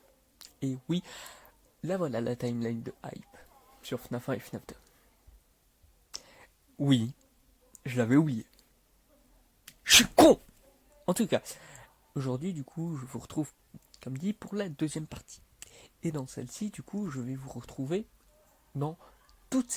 Et oui, là voilà la timeline de hype sur FNAF 1 et FNAF 2. Oui, je l'avais oublié. Je suis con. En tout cas, aujourd'hui du coup, je vous retrouve, comme dit, pour la deuxième partie. Et dans celle-ci, du coup, je vais vous retrouver dans toutes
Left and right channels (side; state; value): both; identical; correlation 1.00